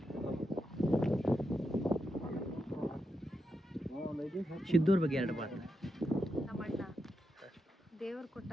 ಸಿದ್ದೂರ್ ಬಗ್ಗೆ 2 ಮಾತು. ನಮ್ಮ ಅಣ್ಣ ದೇವ್ರ ಕೊಟ್ಟ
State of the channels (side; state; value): both; normal; correlation 0.86